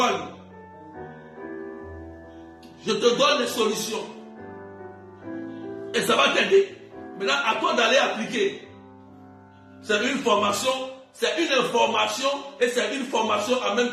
Je te donne des solutions. Et ça va t'aider. Maintenant, à toi d'aller appliquer. C'est une formation, c'est une information et c'est une formation en même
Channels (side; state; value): both; identical; correlation 1.00